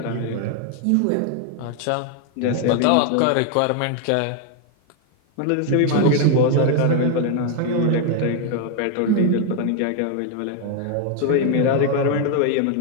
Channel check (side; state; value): both; different; correlation 0.00